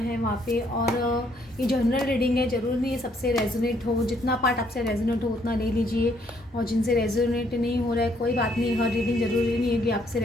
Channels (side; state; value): both; normal; correlation 0.69